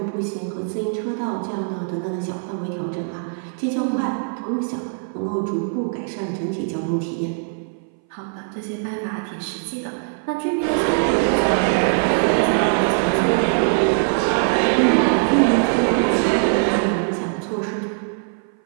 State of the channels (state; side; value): silent; left; 59 dB below the other